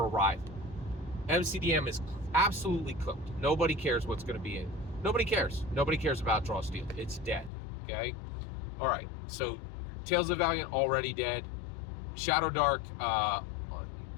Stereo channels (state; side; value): drops out; right; at 7.5 s